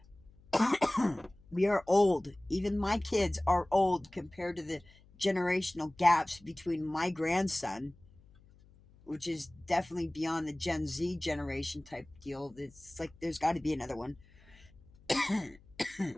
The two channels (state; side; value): noise; left; hum, 27 dB below the sound